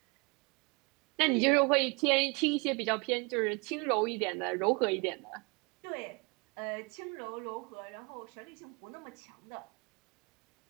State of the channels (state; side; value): quieter; left; 30.3 dB